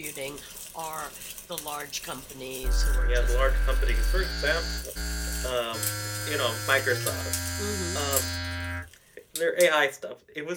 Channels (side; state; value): both; identical; correlation 1.00